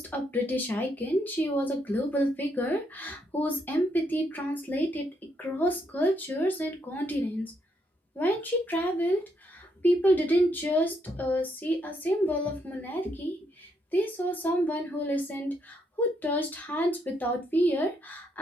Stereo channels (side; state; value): both; normal; correlation 0.76